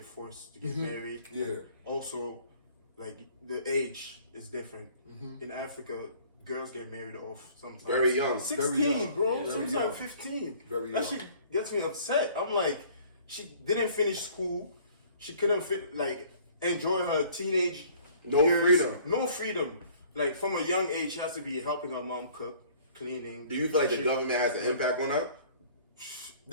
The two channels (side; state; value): both; inverted; correlation -0.54